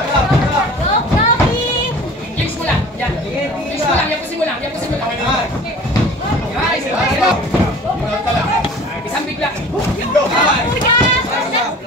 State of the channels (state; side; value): normal; both; correlation 0.44